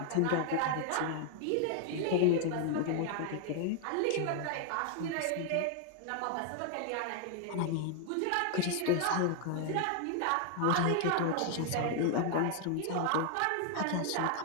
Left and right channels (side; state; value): both; different; correlation 0.00